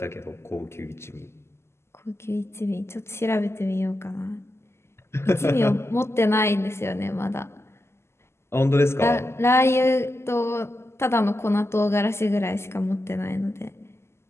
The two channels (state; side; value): late; right; 0.12 ms